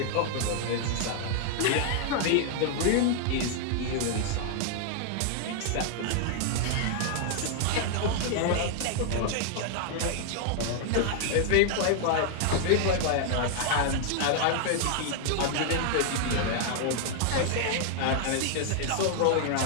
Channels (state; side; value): different; both; correlation 0.00